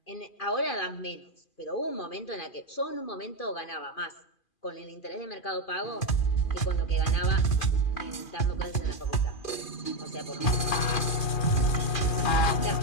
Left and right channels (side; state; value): right; late; 2.4 ms